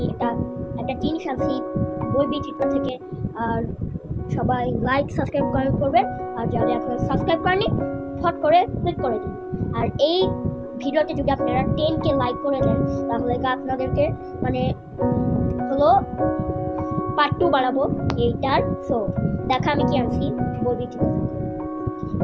একটা জিনিস আনছি বই বিচিত্র থেকে। আর সবাই লাইক সাবস্ক্রাইব কমেন্ট করবেন। আর যারা এখন সাবস্ক্রাইব করেনি ফট করে ক্লিক করে দিন। আর এই ভিডিওতে যদি আপনারা 10K লাইক করে দেন তাহলে আপনাদেরকে মানে হলো পার্ট 2 বানাবো এইটার। সো দেখা আমি কি আনছি বই বিচিত্র থেকে।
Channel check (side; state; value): both; identical; correlation 1.00